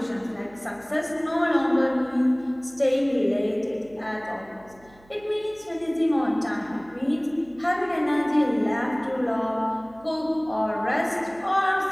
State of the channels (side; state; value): right; noise; hum, 26 dB below the sound